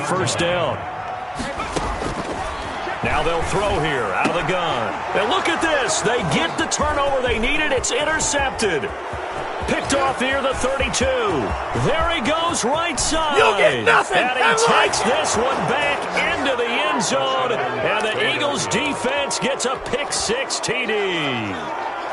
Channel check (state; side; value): identical; both; correlation 1.00